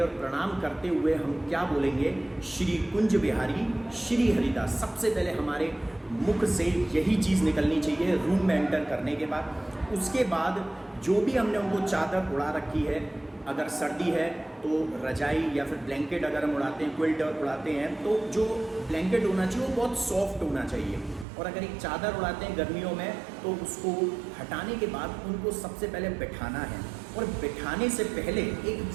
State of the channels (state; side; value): drops out; left; at 21.2 s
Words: और प्रणाम करते हुए हम क्या बोलेंगे, श्री कुंज बिहारी श्री हरिदास। सबसे पहले हमारे मुख से यही चीज़ निकलनी चाहिए रूम में एंटर करने के बाद। उसके बाद जो भी हमने उनको चादर उड़ा रखी है, अगर सर्दी है तो रजाई या फिर ब्लैंकेट अगर हम उड़ाते हैं, क्विल्ट उड़ाते हैं, तो जो ब्लैंकेट होना चाहिए वो बहुत सॉफ्ट होना चाहिए। और अगर एक चादर उड़ाते हैं गर्मियों में तो उसको हटाने के बाद उनको सबसे पहले बिठाना है। और बिठाने से पहले एक